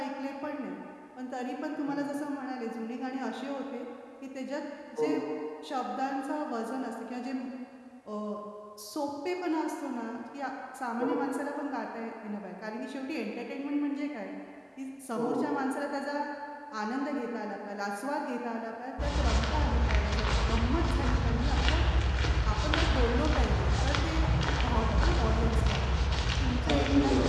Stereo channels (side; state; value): both; identical; correlation 1.00